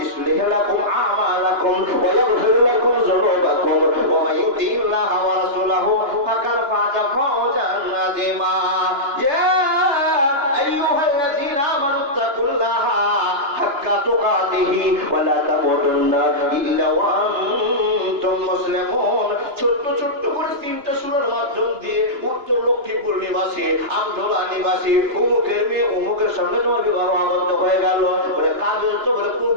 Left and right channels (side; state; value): left; late; 2.9 ms